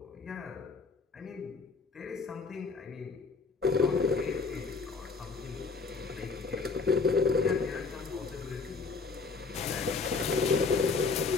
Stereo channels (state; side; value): quieter; right; 4.6 dB